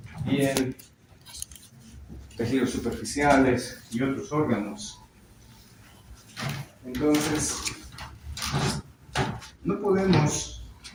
piel, tejidos superficiales y otros órganos. Entonces, no podemos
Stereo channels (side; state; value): both; identical; correlation 1.00